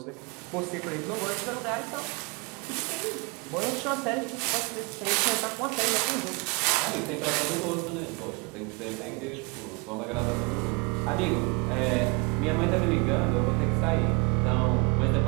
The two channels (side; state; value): left; quieter; 29.9 dB